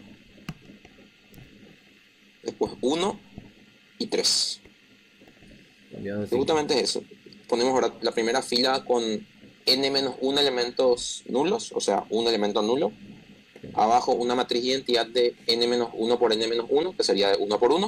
Después 1 y 3. Cambiado de Justamente es eso. ponemos ahora la primera fila con n-1 elementos nulos, o sea, un elemento nulo. Abajo una matriz de identidad de n-1 por n-1, que sería de 1 por 1,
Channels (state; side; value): identical; both; correlation 1.00